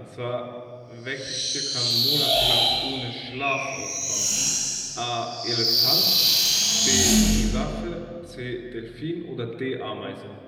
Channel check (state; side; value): identical; both; correlation 1.00